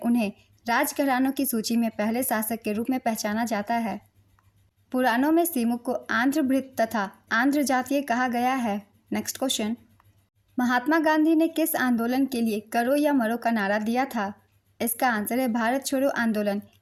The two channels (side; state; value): both; identical; correlation 1.00